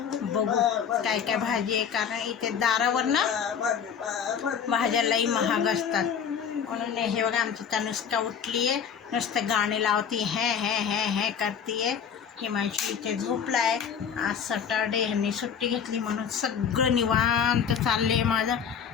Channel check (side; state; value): right; quieter; 7.5 dB